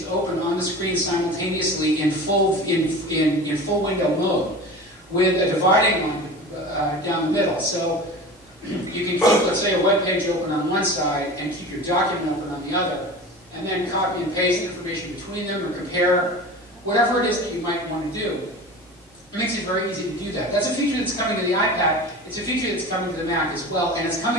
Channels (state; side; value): normal; both; correlation 0.34